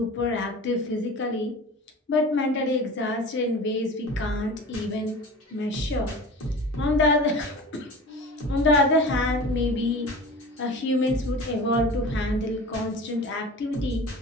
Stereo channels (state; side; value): normal; both; correlation 0.37